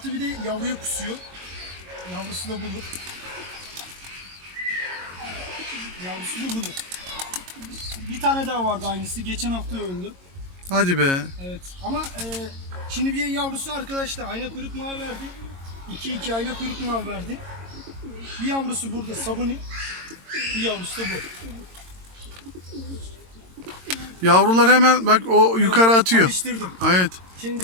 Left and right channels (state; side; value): late; left; 22 ms